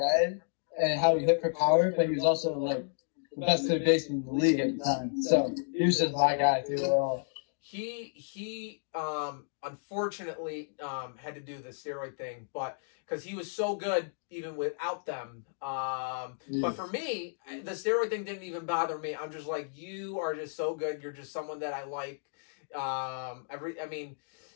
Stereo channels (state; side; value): silent; right; digital silence